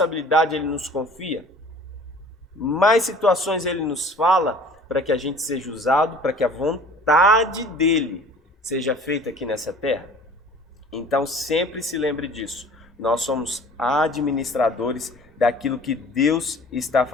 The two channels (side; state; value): both; normal; correlation 0.47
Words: Ele nos confia, mais situações Ele nos fala para que a gente seja usado, para que a vontade dEle seja feita aqui nessa terra. Então sempre se lembre disso. Nós somos administradores daquilo que Deus está